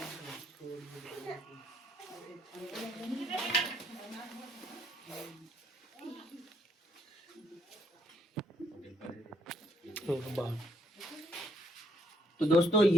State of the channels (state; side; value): normal; both; correlation 0.71